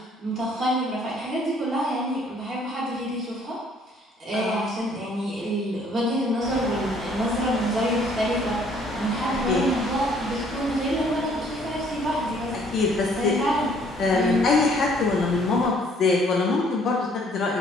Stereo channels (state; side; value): normal; both; correlation 0.61